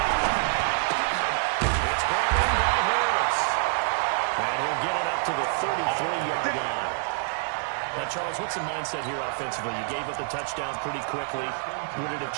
It's brought in by Harris. And he'll get it up to the 33-yard line. Now, Charles, what's the mindset here offensively? You gave up the touchdown pretty quickly. Would it have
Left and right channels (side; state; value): left; silent; digital silence